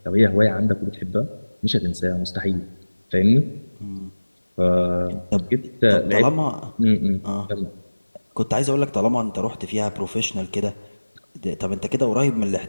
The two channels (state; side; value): inverted; both; correlation -1.00